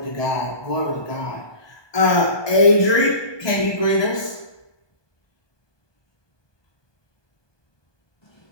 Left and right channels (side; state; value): right; late; 1.2 ms